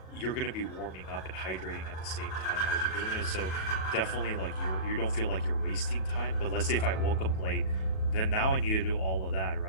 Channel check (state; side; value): late; right; 37 ms